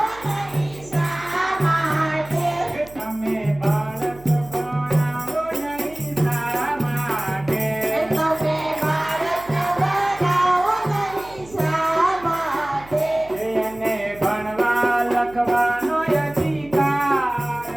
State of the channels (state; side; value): noise; right; hum, 21 dB below the sound